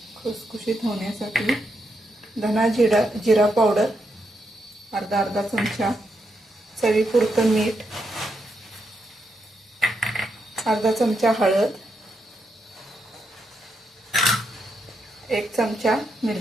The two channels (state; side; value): normal; both; correlation 0.82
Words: खुसखुशीत होण्यासाठी, धना जिरा पावडर अर्धा चमचा, चवीपुरतं मीठ, अर्धा चमचा हळद, 1 चमचा